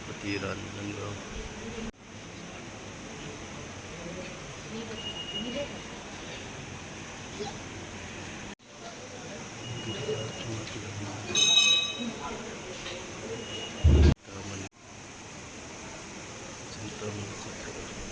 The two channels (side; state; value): both; identical; correlation 1.00